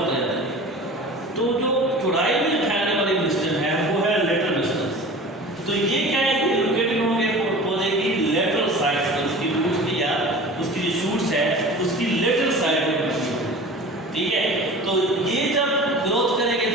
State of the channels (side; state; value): both; normal; correlation 0.39